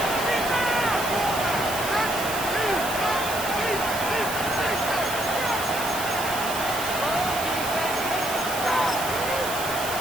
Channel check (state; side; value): noise; right; hiss, 7 dB below the sound